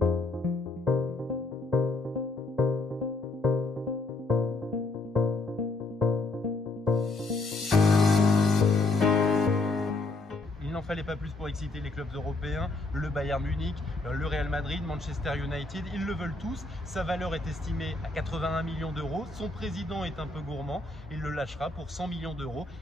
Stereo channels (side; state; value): right; quieter; 3.2 dB